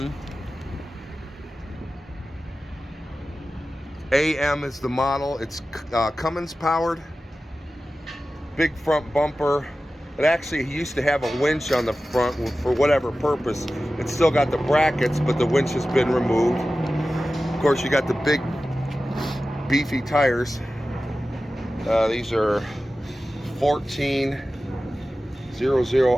AM is the model. It's Cummins powered. Big front bumper. It actually used to have a winch on the front for whatever purpose. It's still got the brackets, but the winch has been removed. Of course, you got the big beefy tires. These are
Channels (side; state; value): both; normal; correlation 0.95